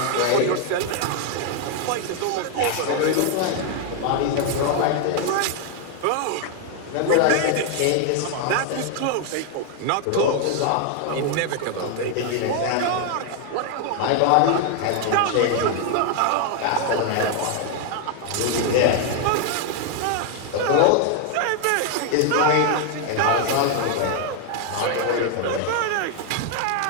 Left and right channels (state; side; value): different; both; correlation 0.00